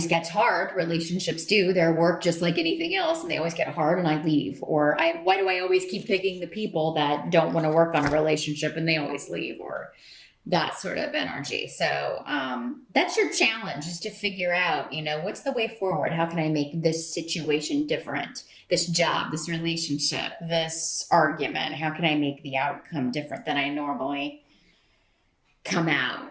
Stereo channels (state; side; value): identical; both; correlation 1.00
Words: gets hard. Relationships do. They're work just like anything else, and they always get hard, and I leave. Or why do I always keep picking the people that don't want to work on a relationship, and they always leave? Or that sort of energy. So that's your challenge, is to figure out, what's the way forward? How can I make this situation different? This job, this relationship, this argument, how can I make the outcome different than I normally come out